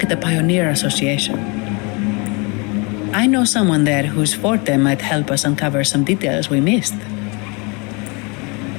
at the Pioneer Association. I know someone there whose forte might help us uncover some details we missed.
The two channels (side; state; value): right; quieter; 30.2 dB